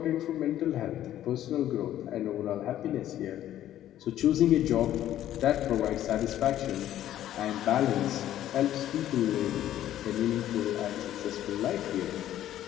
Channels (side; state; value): right; quieter; 12.3 dB